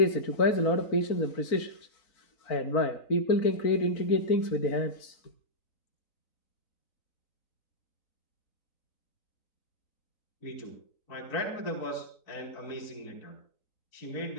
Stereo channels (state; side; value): late; right; 3.9 ms